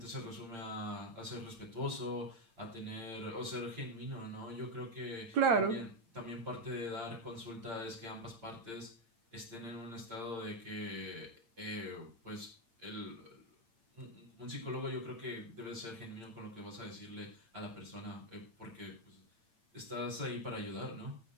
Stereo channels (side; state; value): left; late; 8.8 ms